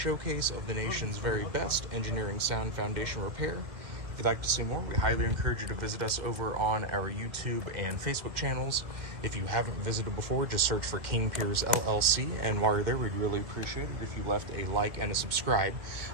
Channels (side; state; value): left; late; 1.7 ms